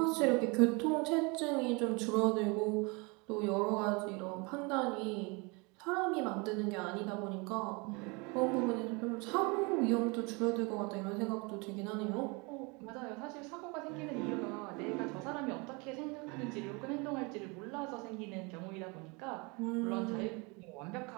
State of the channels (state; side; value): quieter; left; 29.1 dB